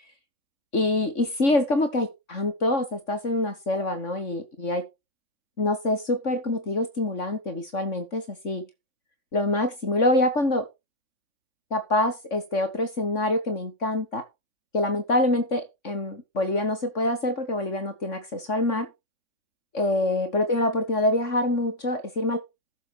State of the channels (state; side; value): late; right; 3.6 ms